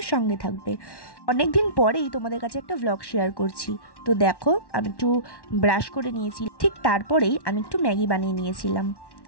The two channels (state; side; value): late; right; 1.1 ms